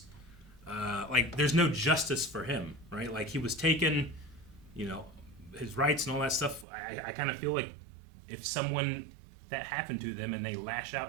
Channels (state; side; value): drops out; left; at 6.7 s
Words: like there's no justice for him, right? Like he was taken, his rights and all that stuff. I kind of feel like if someone that happened to them and they lash